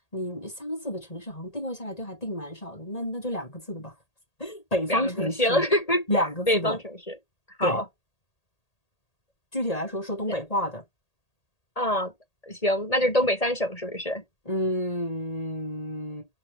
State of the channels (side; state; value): right; late; 1.8 ms